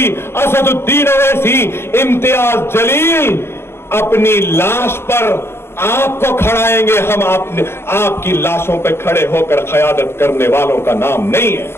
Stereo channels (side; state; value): right; late; 0.12 ms